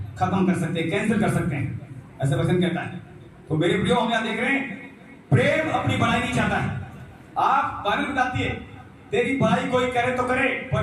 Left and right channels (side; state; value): both; identical; correlation 1.00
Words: खत्म कर सकते हैं, कैंसिल कर सकते हैं, ऐसा वचन कहता है। तो मेरे प्रियो, हम यहां देख रहे हैं प्रेम अपनी बढ़ाई नहीं चाहता है। आप बाइबल बताती है तेरी बढ़ाई कोई करे तो करे,